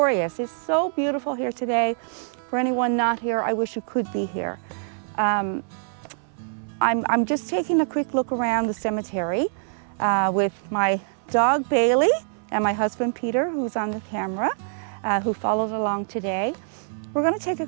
It's so beautiful here today. For anyone not here, I wish you could be here. I'm just taking a quick look around the cemetery with my dog Bailey and my husband Peter, who's on the camera, who followed along today. We're going to take a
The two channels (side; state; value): left; silent; 60 dB below the other